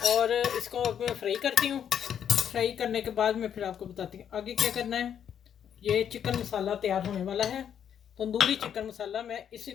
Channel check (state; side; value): quieter; right; 8.8 dB